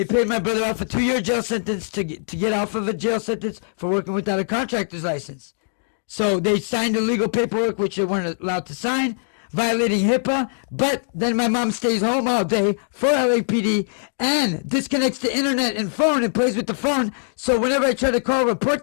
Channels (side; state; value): right; silent; digital silence